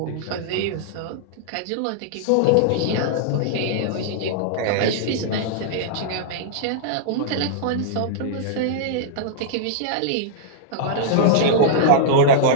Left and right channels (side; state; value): both; different; correlation -0.02